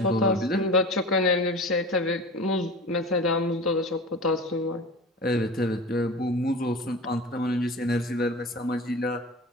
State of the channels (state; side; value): normal; both; correlation 0.34